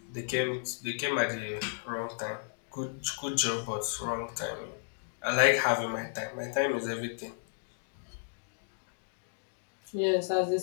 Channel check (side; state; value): right; silent; digital silence